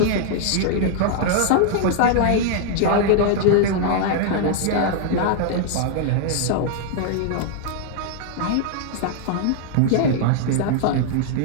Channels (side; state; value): both; different; correlation -0.01